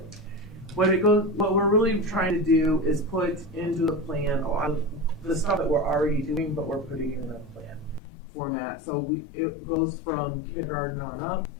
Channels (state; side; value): drops out; right; at 8.0 s